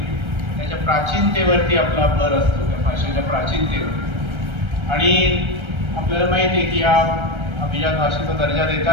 त्याच्या प्राचीनतेवरती आपला भर असतो, त्या भाषेच्या प्राचीनतेवर. आणि आपल्याला माहिती आहे की या अभिजात भाषेचा दर्जा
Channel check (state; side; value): late; left; 1.3 ms